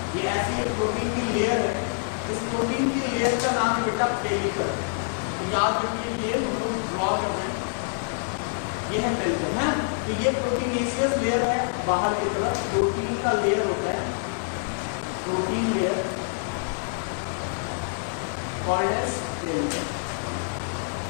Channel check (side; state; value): right; silent; digital silence